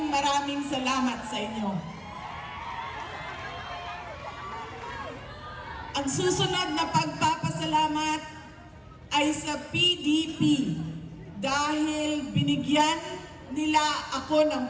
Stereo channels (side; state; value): both; identical; correlation 1.00